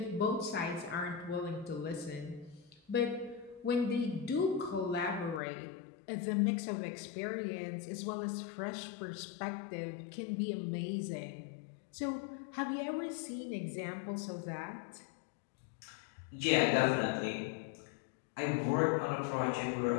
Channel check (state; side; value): drops out; right; at 5.4 s